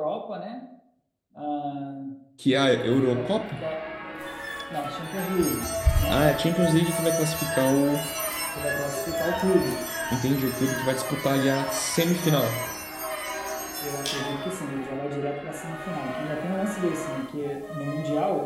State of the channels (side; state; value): both; identical; correlation 1.00